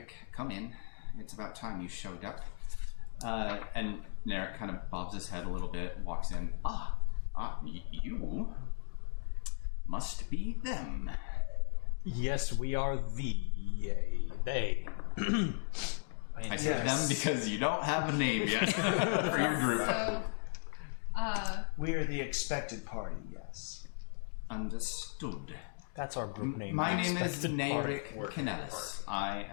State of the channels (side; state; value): right; silent; 54 dB below the other